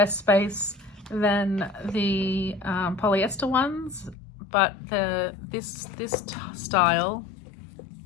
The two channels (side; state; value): right; drops out; at 4.2 s